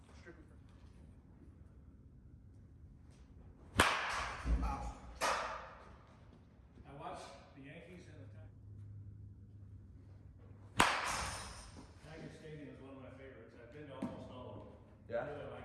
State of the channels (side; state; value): both; identical; correlation 1.00